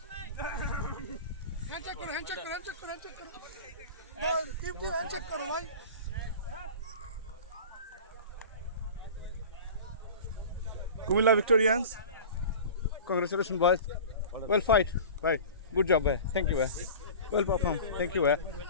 Comilla Victorians congratulations boys well fight bye good job bye thank you well performed thank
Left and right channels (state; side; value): inverted; both; correlation -0.36